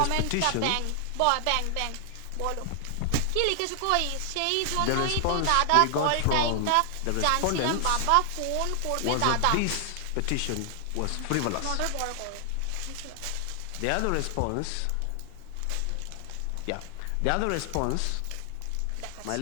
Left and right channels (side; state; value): both; different; correlation 0.00